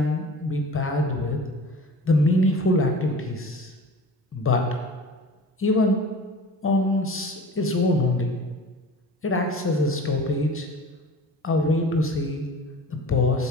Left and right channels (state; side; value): normal; both; correlation 0.40